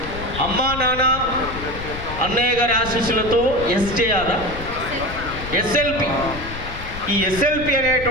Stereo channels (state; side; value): noise; left; rumble, 10 dB below the sound